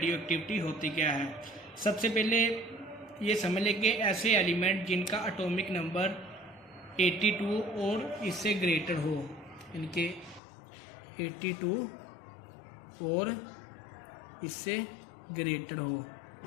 एक्टिविटी होती क्या है। सबसे पहले ये समझ लें कि ऐसे एलिमेंट जिनका एटॉमिक नंबर 82 और इससे ग्रेटर हो, इनके 82 और इससे ग्रेटर हो,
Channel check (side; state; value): right; drops out; at 10.4 s